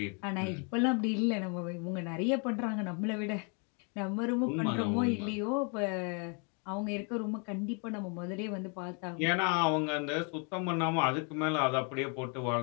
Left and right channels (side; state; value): right; quieter; 36.8 dB